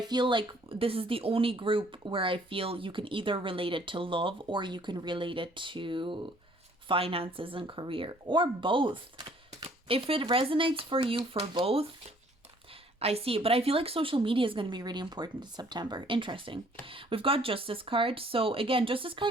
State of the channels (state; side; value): normal; both; correlation 0.59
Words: feel like this is the only group where I feel you can either relate it to love or you can relate it to finances and career, or both. If it resonates for you for both, I see it. But I feel like social media is going to be really important in September. Interesting. We've got Justice card. So again, Justice